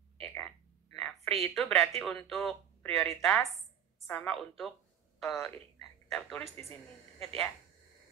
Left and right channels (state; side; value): quieter; left; 9.2 dB